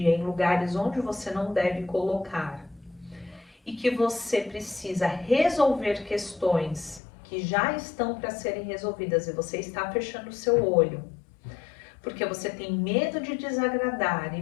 em lugares onde você não deve colocar, e que você precisa resolver questões que já estão para serem resolvidas e você está fechando o seu olho, porque você tem medo de desagradar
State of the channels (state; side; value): drops out; right; at 7.0 s